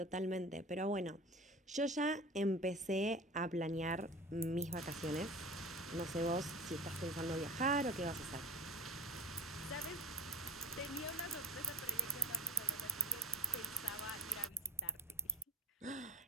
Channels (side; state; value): both; normal; correlation 0.31